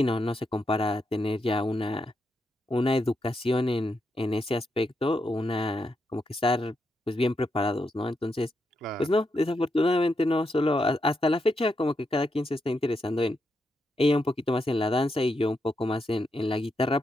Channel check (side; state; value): both; normal; correlation 0.83